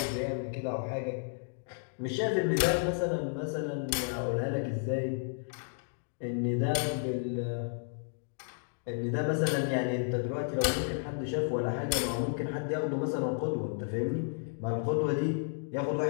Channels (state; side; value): silent; right; digital silence